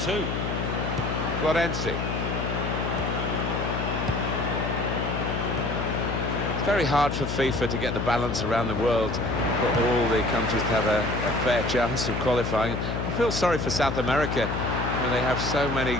Florenzi. It's very hard for FIFA to get the balance around the world for all the countries to have a fair chance of qualifying. I feel sorry for South America, where they have so many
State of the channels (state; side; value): noise; left; hum, 2 dB below the sound